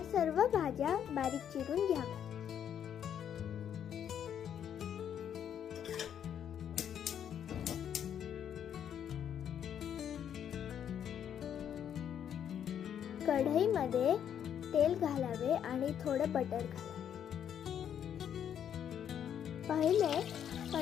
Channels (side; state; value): right; quieter; 9.1 dB